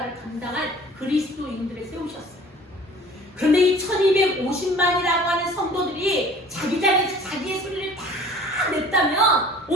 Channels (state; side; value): normal; both; correlation 0.49